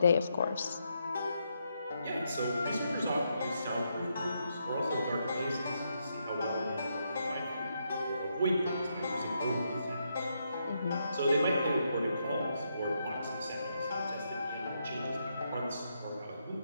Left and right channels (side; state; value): both; inverted; correlation -0.80